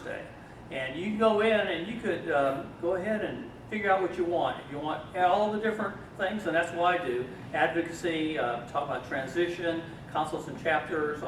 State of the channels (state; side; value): identical; both; correlation 1.00